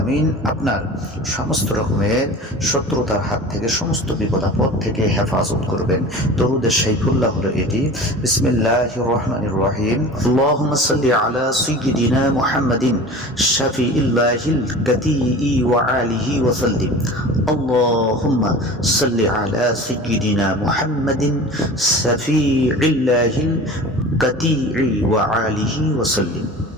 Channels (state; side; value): normal; both; correlation 0.37